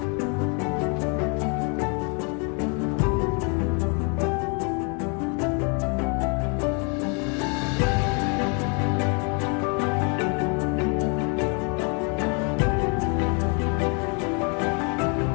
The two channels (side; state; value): right; quieter; 35.9 dB